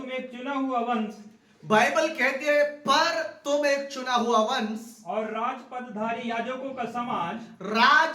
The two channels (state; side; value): identical; both; correlation 1.00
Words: एक चुना हुआ वंश, बाइबल कहती है पर तुम एक चुना हुआ वंश और राजपदधारी याजकों का समाज,